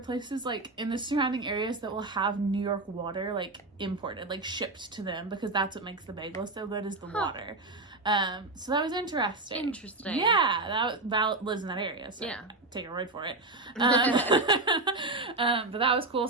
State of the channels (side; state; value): left; quieter; 3.1 dB